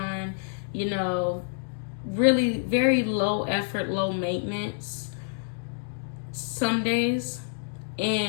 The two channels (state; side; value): silent; right; digital silence